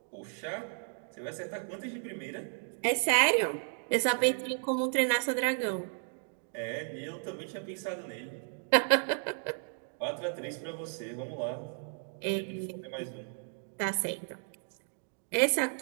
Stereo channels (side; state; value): left; silent; 55 dB below the other